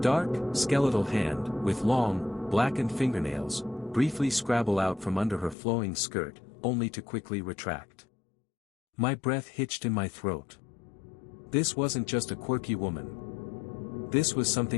skeletal hand, with long, blackened fingernails, briefly scrabble out from under her flowing skirt, only to quickly retract. My breath hitched in my throat. This wasn't just a quirky woman. This was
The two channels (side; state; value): right; drops out; at 5.6 s